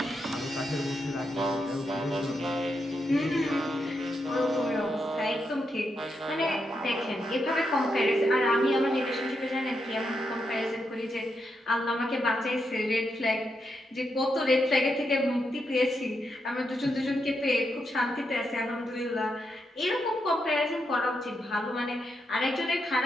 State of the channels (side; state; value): both; normal; correlation 0.83